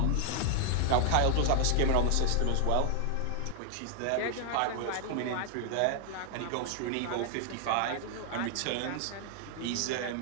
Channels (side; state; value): both; different; correlation 0.00